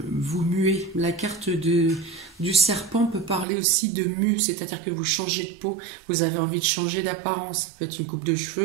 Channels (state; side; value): drops out; left; at 3.5 s